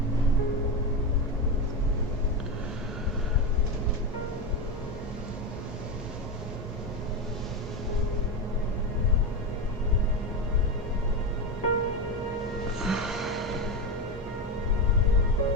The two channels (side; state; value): both; normal; correlation 0.15